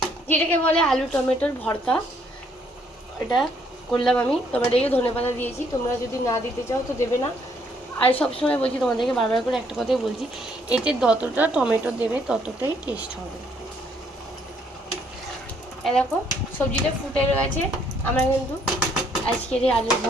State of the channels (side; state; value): both; normal; correlation 0.68